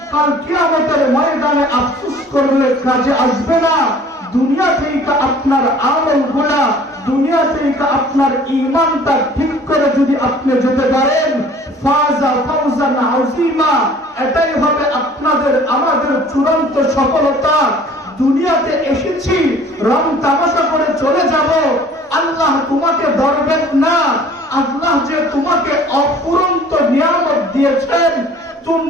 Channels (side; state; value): both; normal; correlation 0.51